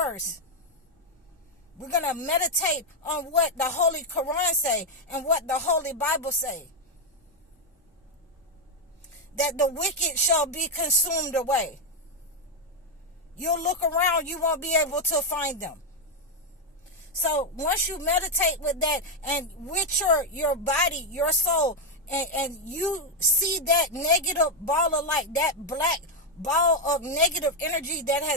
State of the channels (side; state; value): both; normal; correlation 0.03